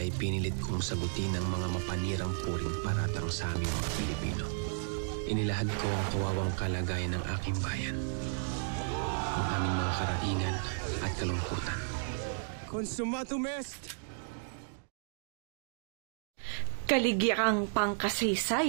ay pinilit kong sagutin ang mga mapanirang puring paratang sa aming mga Pilipino. Inilahad ko ang kawawang kalagayan ng aking bayan, ang aming mga karaingan at kalungkutan. Consumatum est! Kaligirang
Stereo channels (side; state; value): left; silent; digital silence